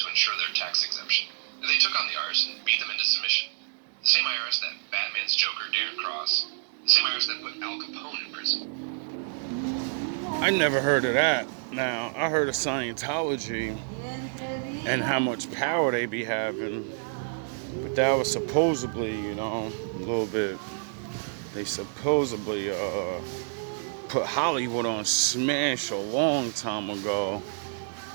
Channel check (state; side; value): silent; left; digital silence